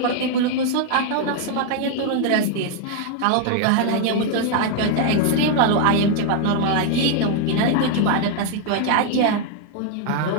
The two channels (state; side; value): different; both; correlation 0.00